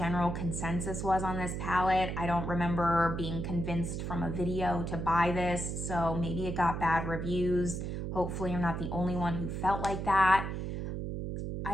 consensus was on this palette. I don't remember being convinced from a video to buy this, so maybe it got bad reviews. Hopefully I'm not the only one who felt like that.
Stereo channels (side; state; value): right; noise; hum, 4 dB below the sound